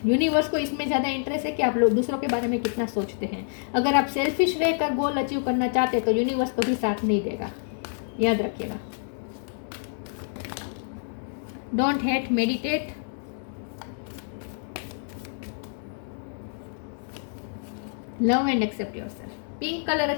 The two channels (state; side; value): silent; right; digital silence